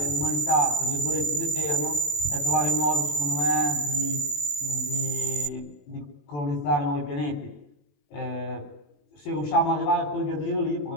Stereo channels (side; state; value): right; late; 21 ms